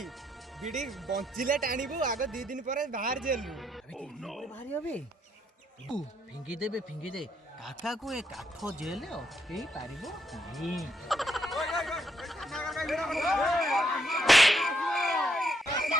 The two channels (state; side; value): normal; both; correlation 0.75